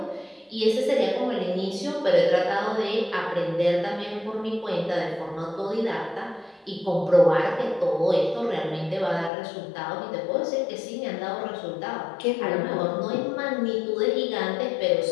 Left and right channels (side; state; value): right; drops out; at 9.3 s